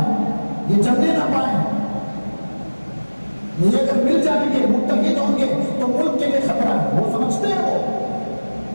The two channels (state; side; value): inverted; both; correlation -1.00